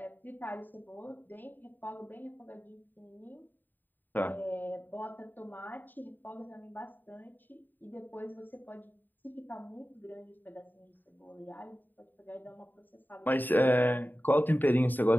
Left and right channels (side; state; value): right; late; 0.090 ms